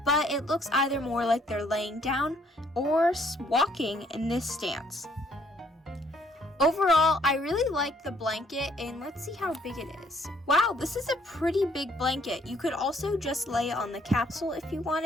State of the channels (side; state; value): both; normal; correlation 0.66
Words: but it looks either more like they're laying down or walking in this stance. Overall, I really like the blanket, and let's see how big it is. Wow, this is a pretty big blanket. You could also just lay it on the capsule if you